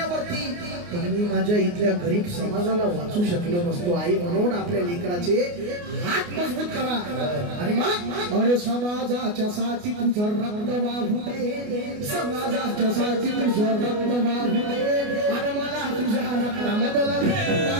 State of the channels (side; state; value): left; late; 29 ms